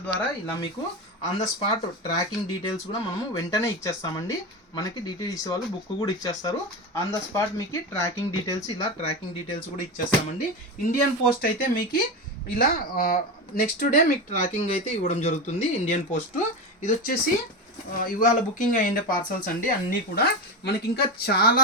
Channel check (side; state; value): both; normal; correlation 0.19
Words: ద్వారా ఇలా మీకు on the spot tracking details కూడా మనము వెంటనే ఇచ్చేస్తామండి. మనకి డిటిడిసి వాళ్ళు బుక్ కూడా ఇచ్చేస్తారు. ఆన్ ద స్పాట్ మీకు ట్రాకింగ్ డీటెయిల్స్ కూడా ఇచ్చేస్తామండి. ఇండియన్ పోస్ట్ అయితే మీకు ఇలా నెక్స్ట్ డే మీకు ట్రాకింగ్ అయితే ఇవ్వడం జరుగుతుంది. ఇండియన్ పోస్ట్ ఇది వచ్చేసి ఇవాళ బుకింగ్ అయ్యిండే పార్సల్స్ అండి. అన్నీ కూడా మనకి ఇంకా